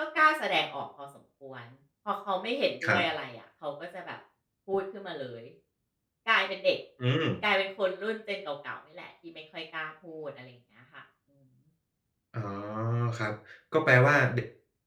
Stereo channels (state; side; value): identical; both; correlation 1.00